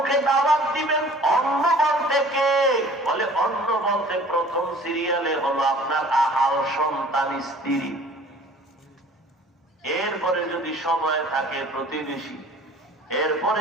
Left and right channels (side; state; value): both; normal; correlation 0.49